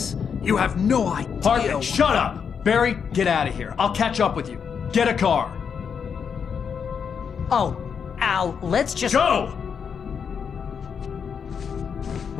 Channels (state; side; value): quieter; right; 6.8 dB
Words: You have no idea. Hartman, shut up! Barry, get out of here. I'll catch up with you. Get a car. Oh, Al, let's just... Go!